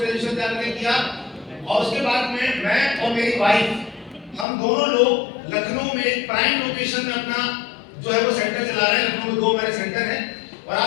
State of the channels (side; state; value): right; drops out; at 4.5 s